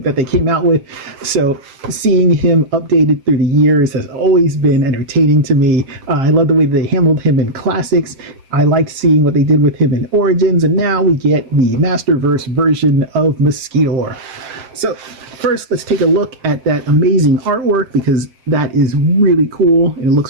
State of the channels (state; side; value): late; left; 7.6 ms